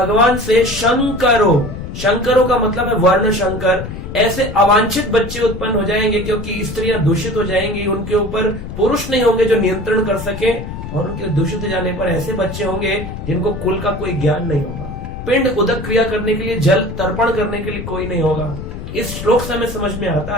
से, शंकरो, शंकरों का मतलब है वर्ण शंकर। ऐसे अवांछित बच्चे उत्पन्न हो जाएंगे क्योंकि स्त्रियां दूषित हो जाएंगी, उनके ऊपर पुरुष नहीं होंगे जो नियंत्रण कर सके, और उनके दूषित हो जाने पर ऐसे बच्चे होंगे जिनको कुल का कोई ज्ञान नहीं होगा। पिंड उदक क्रिया करने के लिए, जल तर्पण करने के लिए कोई नहीं होगा। इस श्लोक से हमें समझ में आता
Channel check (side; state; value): left; noise; rumble, 9 dB below the sound